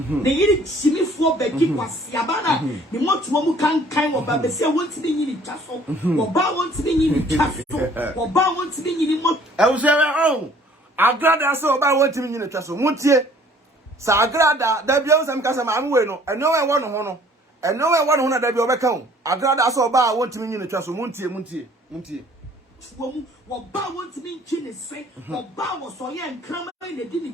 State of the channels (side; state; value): both; normal; correlation 0.56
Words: ne yiri chimifo bagi kwasiaba na ne motuo mu kankan wo ba bese wonti ne nyini twaso wo ba wonti ne nyini twaso wo ba wonti ne nyini mo oh Agradaa so ba wonti ne nyini twaso muntie sa Agradaa da bia usam kasa ma anwe no eno we wo no ho no eno we wo no ho na da bia obeka ho Agradaa so ba wonti ne nyini twaso muntie wo ba wonti ne nchi ne se wo ba wo so ye nkrama ne di ne